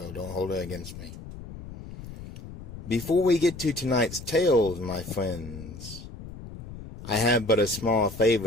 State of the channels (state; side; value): noise; left; rumble, 13 dB below the sound